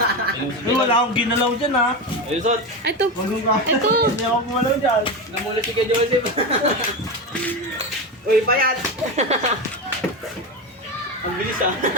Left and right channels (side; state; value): both; normal; correlation 0.18